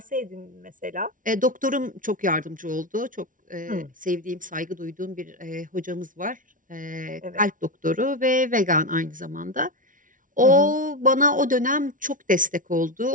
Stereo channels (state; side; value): late; left; 0.38 ms